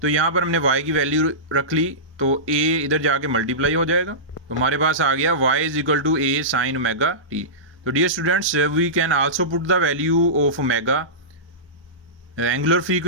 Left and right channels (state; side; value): normal; both; correlation -0.19